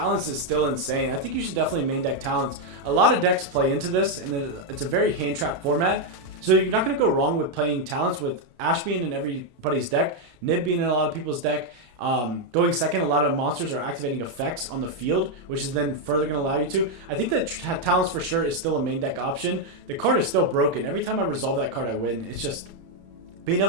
is still insane. I think you should definitely main deck Talents. A lot of decks play into this, and it's a very hand trap format. So you're not going to go wrong with playing Talents with Ash being in everybody's deck, Nib being in a lot of people's deck. Going second, a lot of monsters are activating effects on the field, which is then further going to allow you to. I think that Talents for sure is still a main deck option. The card is still broken. Every time I resolve that card, I win. It's just being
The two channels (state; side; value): late; left; 31 ms